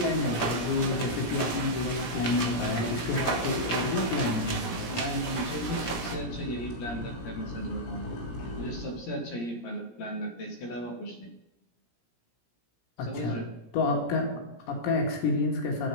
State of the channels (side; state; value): right; late; 17 ms